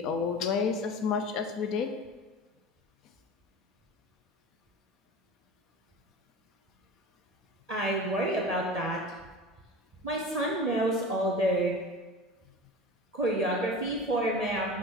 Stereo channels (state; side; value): normal; both; correlation 0.34